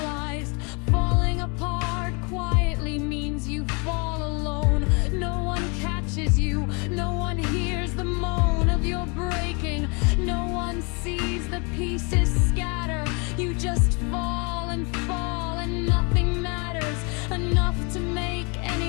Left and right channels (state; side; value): quieter; right; 32.4 dB